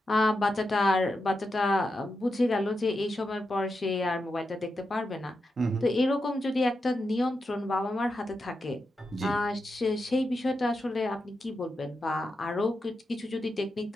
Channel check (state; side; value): normal; both; correlation 0.87